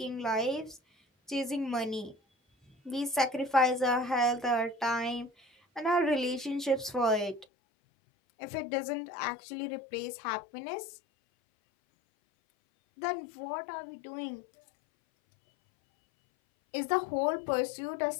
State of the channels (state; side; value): drops out; right; at 7.5 s